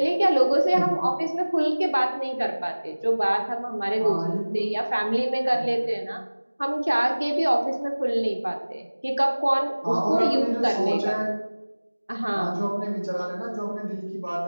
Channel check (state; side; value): inverted; both; correlation -1.00